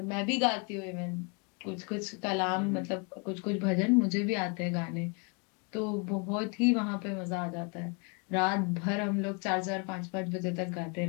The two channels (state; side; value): quieter; right; 33.7 dB